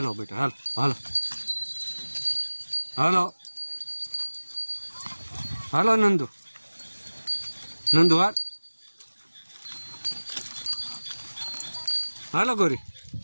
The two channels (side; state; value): both; inverted; correlation -1.00